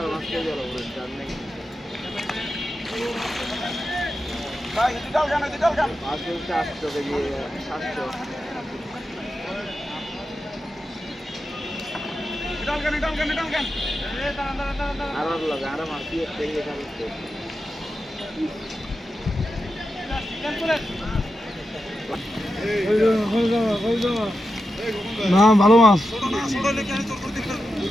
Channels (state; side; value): normal; both; correlation 0.90